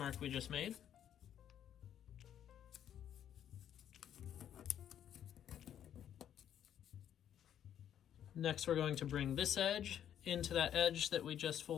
we just made. Next, we're going to bring this edge into that edge that we just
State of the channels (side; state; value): right; quieter; 10.0 dB